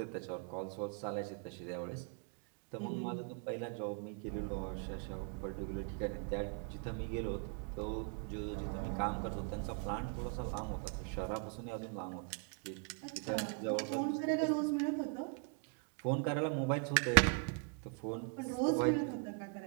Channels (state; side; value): quieter; left; 39.0 dB